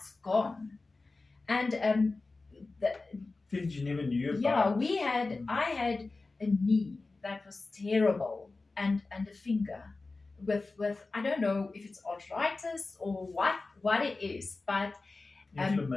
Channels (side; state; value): right; quieter; 3.6 dB